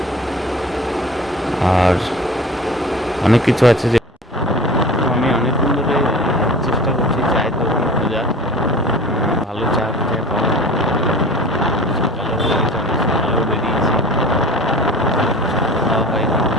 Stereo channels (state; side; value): normal; both; correlation 0.41